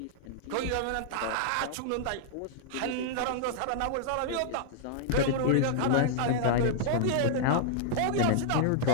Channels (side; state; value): both; different; correlation -0.01